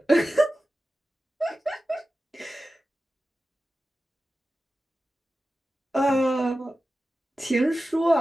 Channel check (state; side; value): normal; both; correlation 0.94